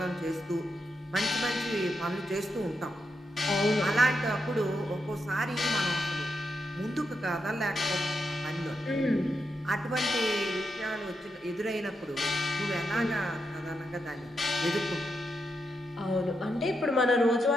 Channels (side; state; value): both; normal; correlation 0.84